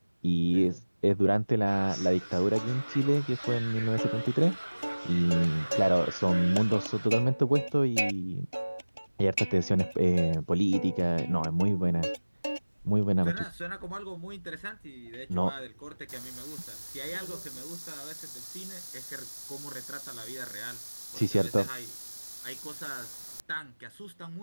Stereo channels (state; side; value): inverted; both; correlation -1.00